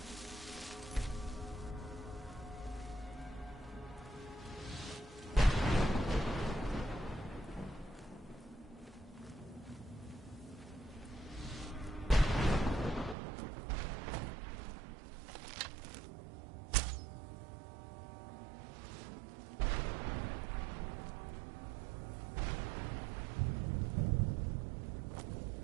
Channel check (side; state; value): left; drops out; at 13.2 s